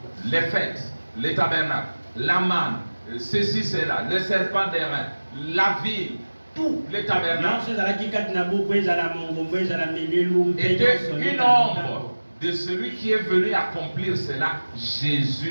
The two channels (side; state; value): both; inverted; correlation -1.00